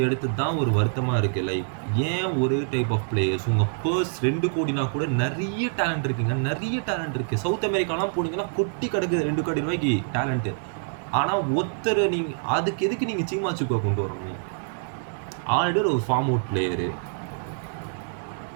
எடுத்தது தான் ஒரு வருத்தமாக இருக்குது. லைக் ஏன் ஒரே டைப் ஆஃப் பிளேயர்ஸ்? உங்கள் பர்ஸ் 2 கோடினா கூட நிறைய டேலண்ட் இருக்குங்க, நிறைய டேலண்ட் இருக்குது. சவுத் அமெரிக்காலாம் போனீங்கன்னா கொட்டி கிடக்குது 2 கோடி ரூபாய்க்கு டேலண்ட்டு. ஆனால் ஒருத்தர் நீங்கள் அதுக்கு எதுக்கு நீங்கள் சீமா சூக்கை கொண்டு வரணும்? ஆல்ரெடி ஒரு ஃபார்ம் அவுட் பிளேயரு.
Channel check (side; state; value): left; silent; digital silence